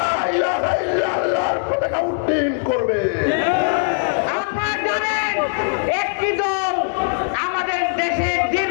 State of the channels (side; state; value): right; silent; digital silence